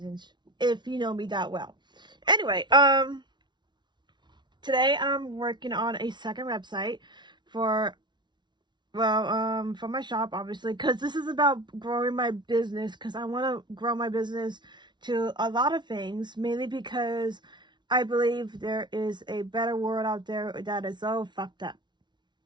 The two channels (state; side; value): late; left; 0.21 ms